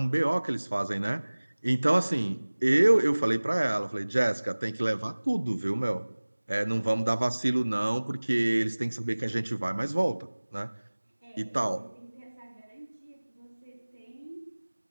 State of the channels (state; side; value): inverted; both; correlation -1.00